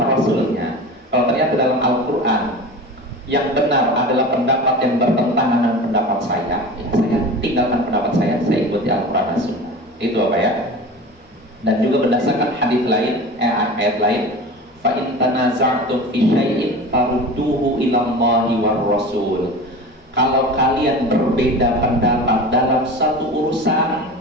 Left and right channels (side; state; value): both; normal; correlation 0.33